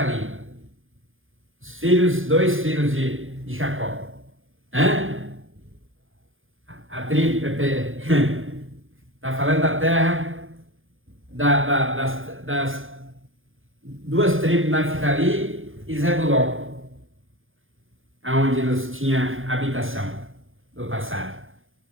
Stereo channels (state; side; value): late; left; 0.59 ms